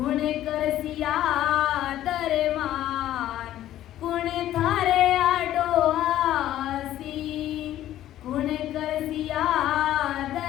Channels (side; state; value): right; quieter; 13.0 dB